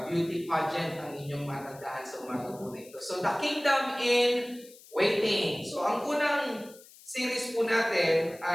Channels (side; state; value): left; noise; hiss, 22 dB below the sound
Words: beauty pageant ang inyong matandaan sa umaga po na ito. So, the kingdom in waiting. So, ang unang series po natin